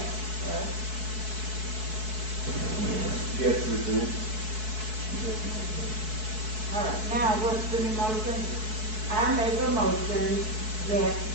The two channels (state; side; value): late; left; 4.6 ms